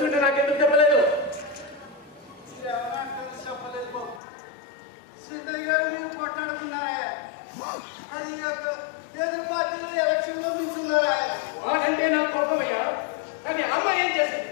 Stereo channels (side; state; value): right; drops out; at 4.2 s